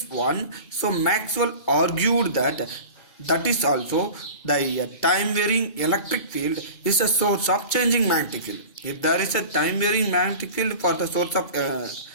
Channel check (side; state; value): right; late; 2.3 ms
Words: one, so Maxwell argued that is also the time varying electric field is a source of changing magnetic field. If there is a time varying magnetic field for the source of